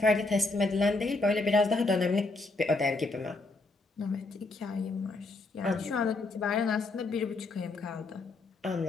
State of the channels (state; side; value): quieter; right; 3.3 dB